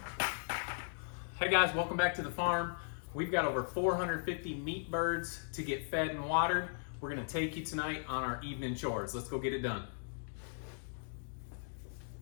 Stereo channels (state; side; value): silent; right; digital silence